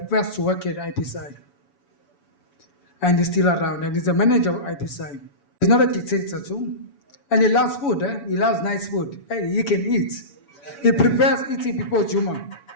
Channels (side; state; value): right; late; 7.0 ms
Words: first worked at IPCI. And he's still around, and he's the manager of IPCI. He's not a dictator too. And he loves food, He loves nice food. Hey, he can eat. He prefers eating before Juma.